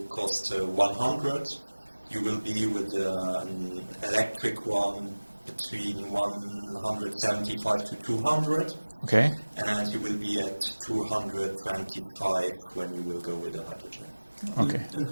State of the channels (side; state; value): both; inverted; correlation -1.00